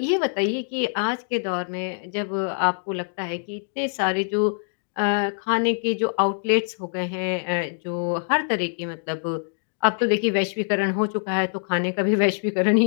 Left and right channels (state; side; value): silent; right; digital silence